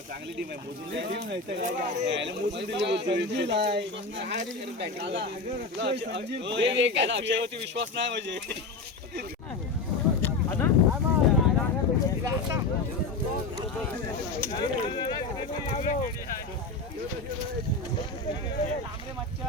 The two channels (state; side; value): quieter; right; 3.7 dB